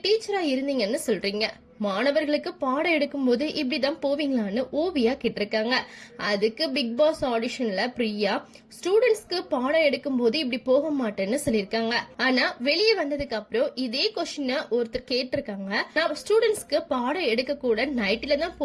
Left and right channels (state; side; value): identical; both; correlation 1.00